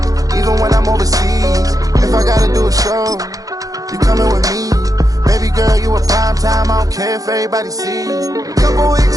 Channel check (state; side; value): late; left; 0.17 ms